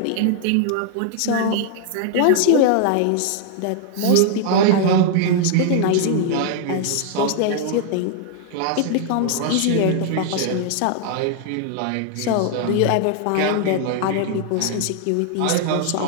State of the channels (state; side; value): different; both; correlation -0.01